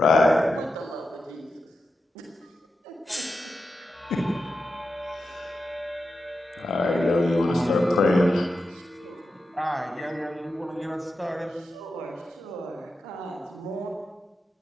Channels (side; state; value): both; normal; correlation 0.90